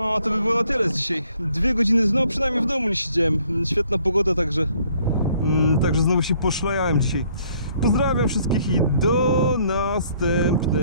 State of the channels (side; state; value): both; inverted; correlation -0.63